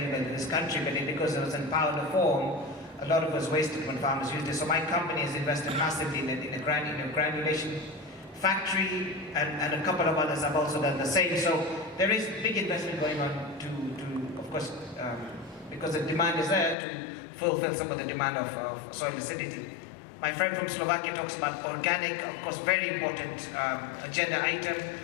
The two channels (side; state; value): right; drops out; at 16.8 s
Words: in this country, but because it was in powder form, a lot of it was wasted when farmers used it. So my company has invested massively in a granulation factory, and a couple of others have also done the same. So there is big investment going on to of course, because the demand is there, to fulfill some of the demand of soil acidity. My friend from Slovakia talks about organic, of course, very important agenda item,